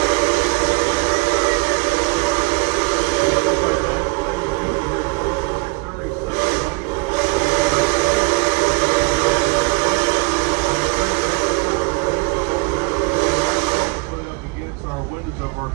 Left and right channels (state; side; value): quieter; left; 27.0 dB